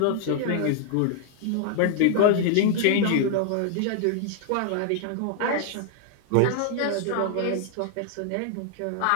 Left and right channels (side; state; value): both; different; correlation -0.01